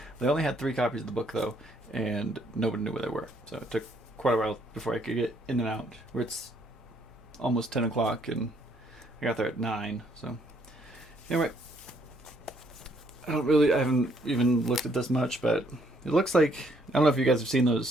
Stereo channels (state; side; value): normal; both; correlation 0.68